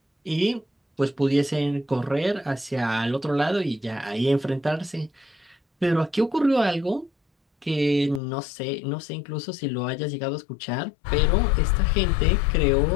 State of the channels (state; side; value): drops out; right; at 8.2 s